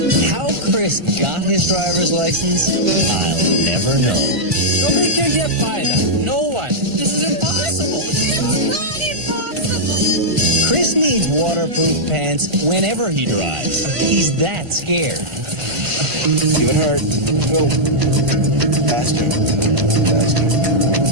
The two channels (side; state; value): left; late; 1.5 ms